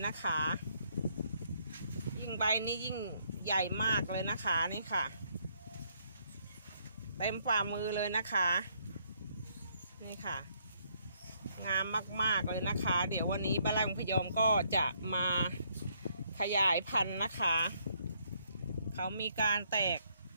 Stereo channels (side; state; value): both; inverted; correlation -0.70